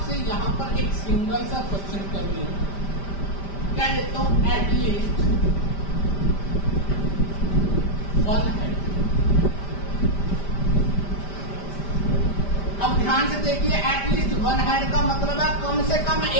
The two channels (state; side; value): late; right; 5.1 ms